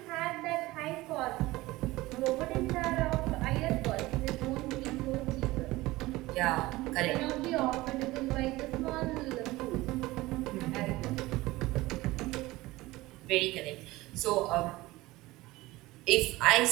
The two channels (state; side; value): quieter; left; 19.2 dB